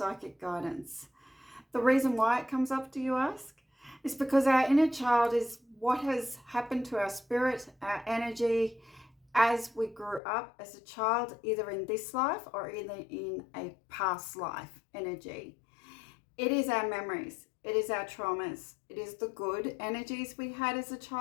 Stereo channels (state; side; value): drops out; right; at 10.2 s